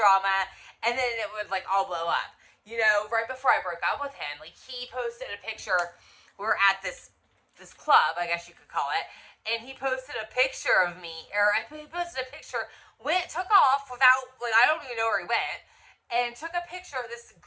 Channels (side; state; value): both; identical; correlation 1.00